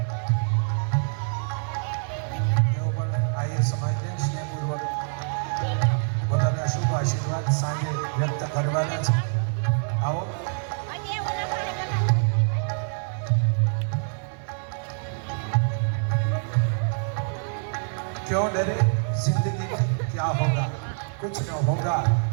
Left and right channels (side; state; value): left; silent; 61 dB below the other